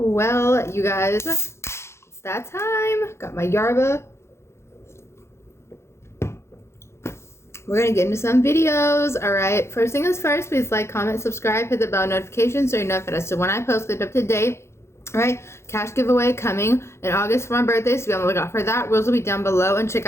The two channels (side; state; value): right; late; 0.13 ms